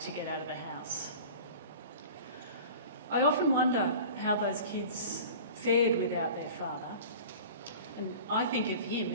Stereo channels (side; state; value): both; inverted; correlation -0.40